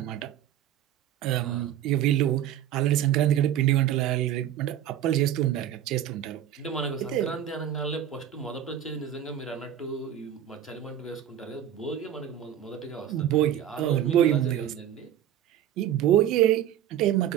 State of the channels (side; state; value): left; quieter; 10.8 dB